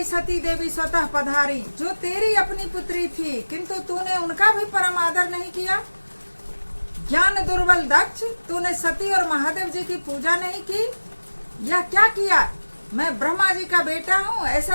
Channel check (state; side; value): inverted; both; correlation -1.00